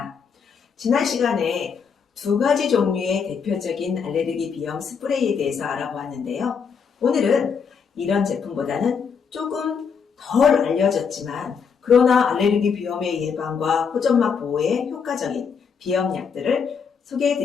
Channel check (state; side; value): quieter; right; 6.3 dB